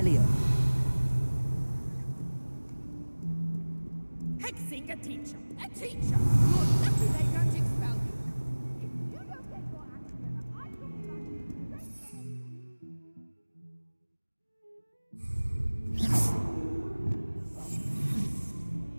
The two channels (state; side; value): inverted; both; correlation -1.00